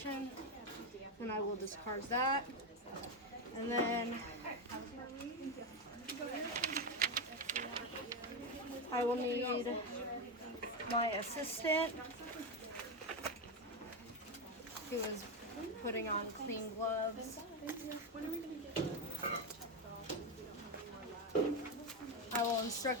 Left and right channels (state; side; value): normal; both; correlation 0.10